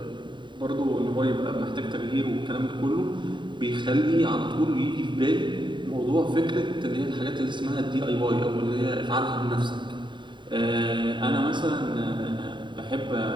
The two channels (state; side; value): late; left; 0.23 ms